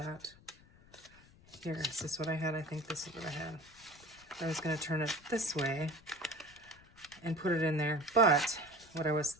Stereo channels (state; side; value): noise; left; rumble, 25 dB below the sound